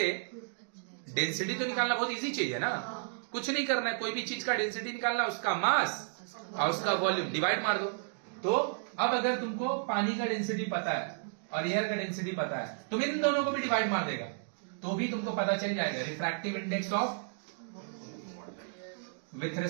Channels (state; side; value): silent; left; digital silence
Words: डेंसिटी तो निकालना बहुत इजी चीज है ना, कुछ नहीं करना है, कोई भी चीज का डेंसिटी निकालना, उसका मास और उसका वॉल्यूम डिवाइड मार दो। तो अब अगर तुमको पानी का डेंसिटी पता है और एयर का डेंसिटी पता है, तुम इन दोनों को भी डिवाइड मार देगा तो भी तुमको पता चल जाएगा refractive index of with